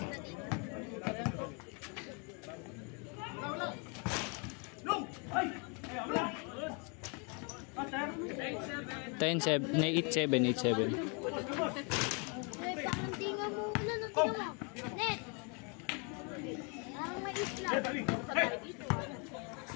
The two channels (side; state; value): right; quieter; 35.0 dB